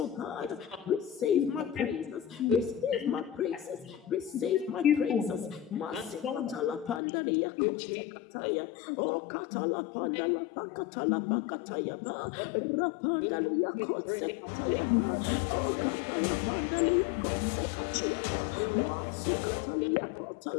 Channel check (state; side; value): drops out; right; at 7.0 s